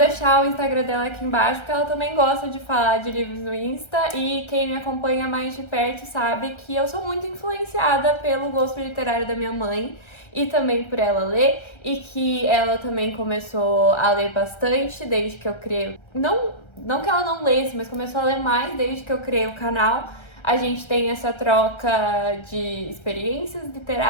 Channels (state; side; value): late; right; 1.3 ms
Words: o Instagram dela aqui embaixo, porque ela também gosta de falar de livros no Insta. E quem me acompanha mais de perto sabe que eu sou muito influenciada pelo gosto literário da minha mãe e também por ela ler. E que ela também começou a ler bastante desde que eu criei... Não que ela não lesse, mas começou a ler mais desde que eu criei o canal. A gente tem essa troca de experiências